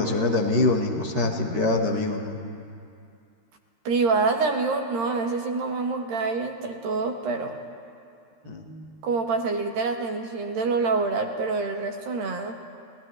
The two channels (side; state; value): left; late; 13 ms